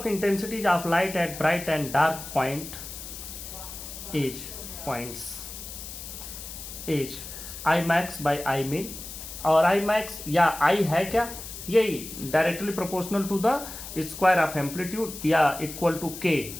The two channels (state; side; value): noise; left; hiss, 11 dB below the sound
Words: intensities of light at bright and dark point is I max by I min, और आई मैक्स या आई है क्या, यही directly proportional to the square of amplitude या equal to k